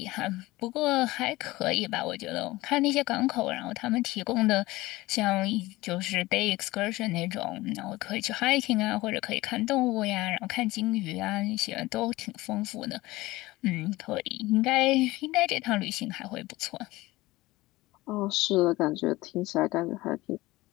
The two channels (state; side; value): quieter; right; 19.4 dB